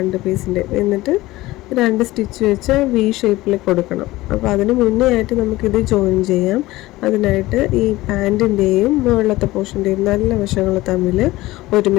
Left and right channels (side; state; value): right; quieter; 18.3 dB